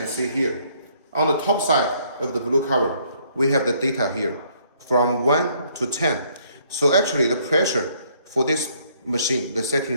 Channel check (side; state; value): both; inverted; correlation -0.66